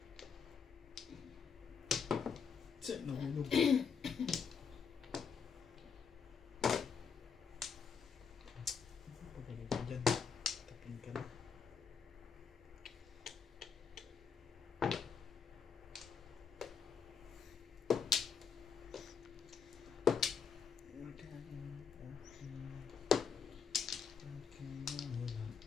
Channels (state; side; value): quieter; right; 6.3 dB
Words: Tse, nahulog. Pagaling ka dyan. Tapin ka na.